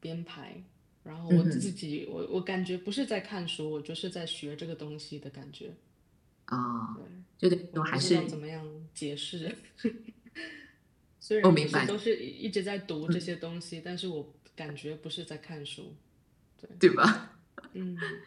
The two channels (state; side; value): identical; both; correlation 1.00